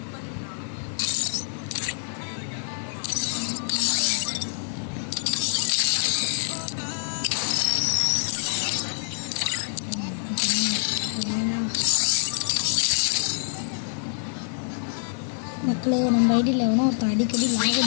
மக்களே, நம்ம ஐடியில் எவனோ ஒருத்தன் அடிக்கடி லாக்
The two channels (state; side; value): silent; right; digital silence